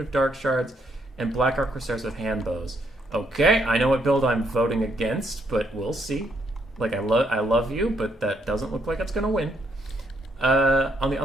of Dark Shards, and Black Arc Corsairs with hand bows. Okay, I know what build I'm voting against, but we'll see. Like, I love you, but that doesn't look like it's going to win. On the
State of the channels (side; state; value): both; normal; correlation 0.74